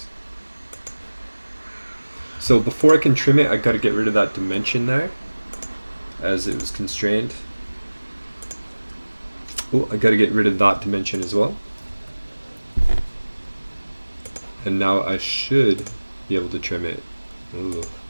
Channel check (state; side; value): inverted; both; correlation -1.00